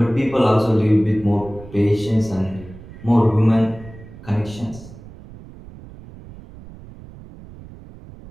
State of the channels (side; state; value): right; noise; rumble, 18 dB below the sound